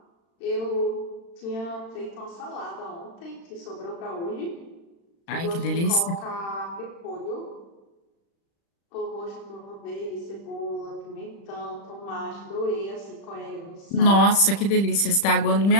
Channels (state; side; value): late; right; 35 ms